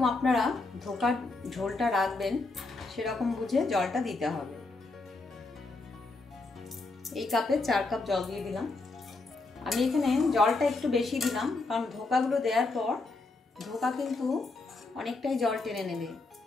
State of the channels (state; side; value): quieter; right; 3.5 dB